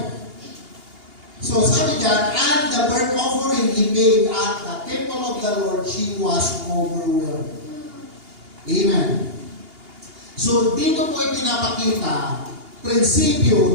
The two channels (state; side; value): late; left; 2.8 ms